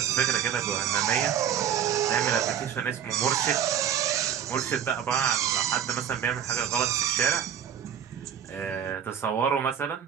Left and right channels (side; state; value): left; quieter; 8.9 dB